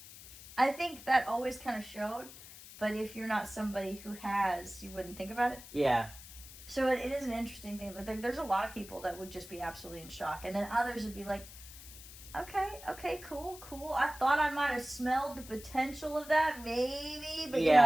I think that always kind of showed, but if you're not somebody who has, you wouldn't think about it. Yeah. So it is an interesting thing. Like, there's a lot of people that would just be absolutely in shock, and then others would be like, okay, cool. I thought I might have smelled the potential of that, maybe, but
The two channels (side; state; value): left; noise; hiss, 16 dB below the sound